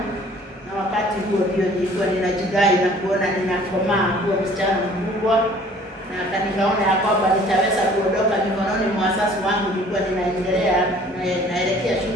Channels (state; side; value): normal; both; correlation 0.53